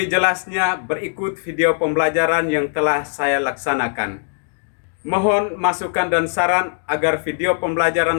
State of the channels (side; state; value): right; silent; digital silence